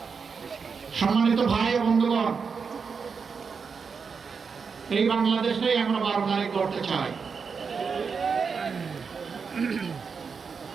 সম্মানিত ভাই ও বন্ধুগণ, এই বাংলাদেশেই আমরা 12 তারিখ করতে চাই।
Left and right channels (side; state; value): left; quieter; 5.6 dB